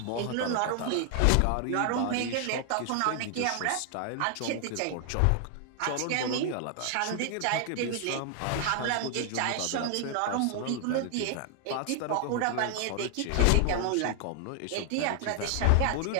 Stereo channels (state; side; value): different; both; correlation 0.00